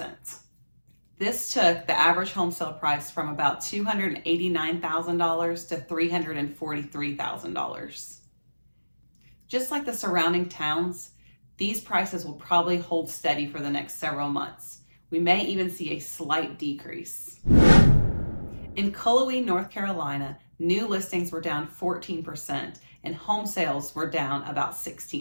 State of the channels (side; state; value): both; inverted; correlation -1.00